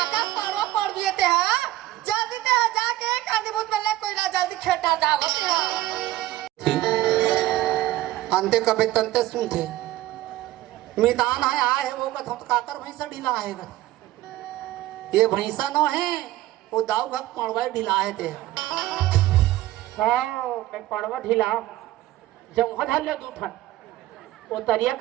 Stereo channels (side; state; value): left; quieter; 15.8 dB